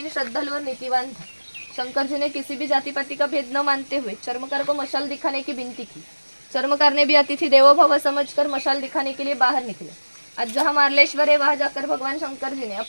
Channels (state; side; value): inverted; both; correlation -1.00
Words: श्रद्धालु और नीतिवान था। शंकर जी ने किसी भी जाति पाति का भेद न मानते हुए चर्मकार को मशाल दिखाने की विनती की। चर्मकार ने भी अतिथि देवो भव समझकर मशाल दिखाने के लिए बाहर निकले। आज जहाँ मार्लेश्वर है वहाँ जाकर भगवान शंकर जी ने